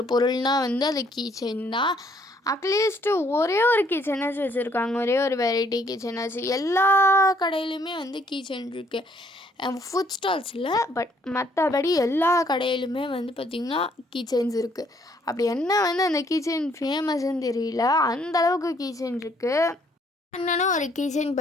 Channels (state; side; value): normal; both; correlation 0.66